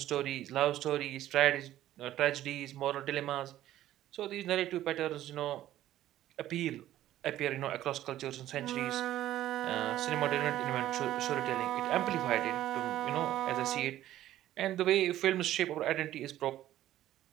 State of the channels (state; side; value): quieter; left; 13.4 dB